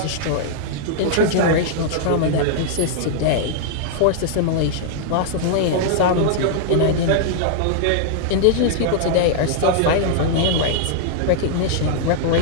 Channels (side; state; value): both; different; correlation -0.01